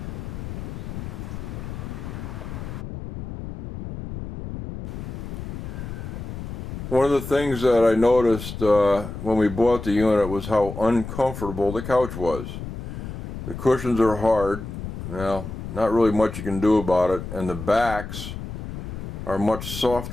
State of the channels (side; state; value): left; noise; rumble, 8 dB below the sound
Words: One of the things that I noticed when we bought the unit was how uncomfortable the couch was. The cushions are hard. Well, not really much you can do about it, and the backs are much